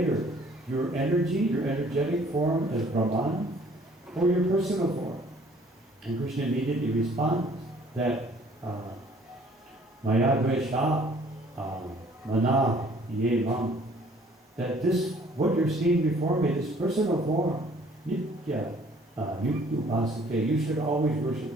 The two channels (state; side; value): normal; both; correlation 0.57